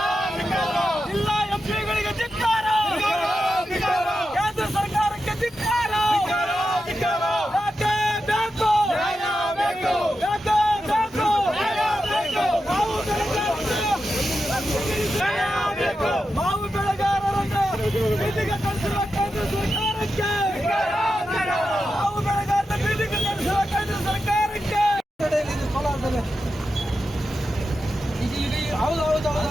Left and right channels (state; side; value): normal; both; correlation 0.89